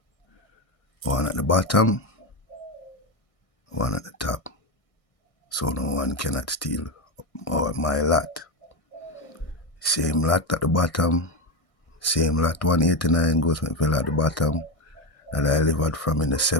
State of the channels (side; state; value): right; late; 1.6 ms